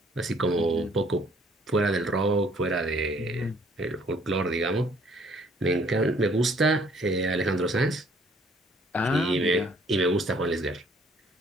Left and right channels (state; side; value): normal; both; correlation 0.61